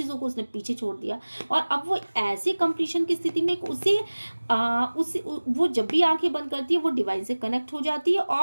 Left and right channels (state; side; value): inverted; both; correlation -1.00